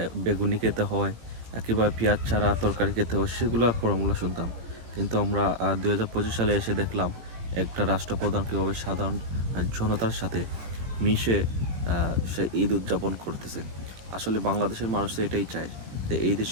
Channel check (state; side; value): late; left; 18 ms